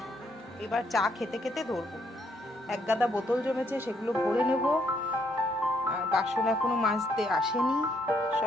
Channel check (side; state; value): both; normal; correlation 0.72